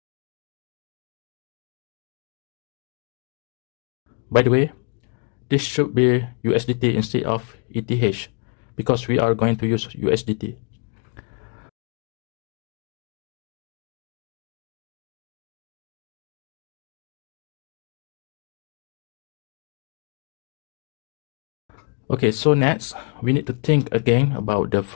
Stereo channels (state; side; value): quieter; right; 39.6 dB